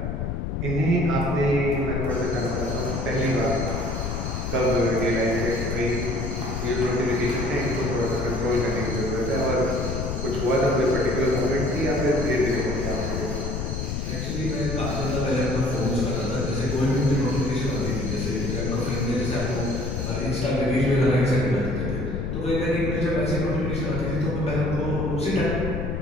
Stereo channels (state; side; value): noise; left; rumble, 3 dB below the sound